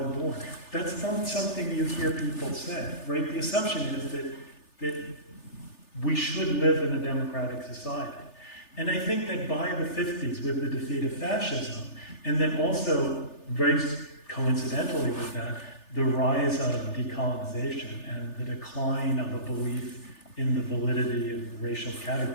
That's not something you hear people say, right? The assumption is that we should live in a democratic society. And I think that by the 50s, with the defeat of fascism, and then also, very coincidentally with that, the rise of decolonization and the decline of a belief in the validity of racial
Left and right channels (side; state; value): right; late; 3.4 ms